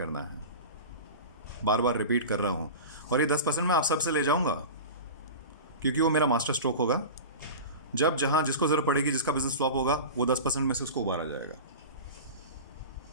है। बार बार रिपीट कर रहा हूँ। और ये 10% मैं आप सबसे ले जाऊँगा, क्योंकि वो मेरा मास्टर स्ट्रोक होगा। जब जहाँ जिसको ज़रूरत पड़ेगी, जिसका बिजनेस फ्लॉप होगा, वो 10% में से उसको उबारा जाएगा।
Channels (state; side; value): inverted; both; correlation -0.30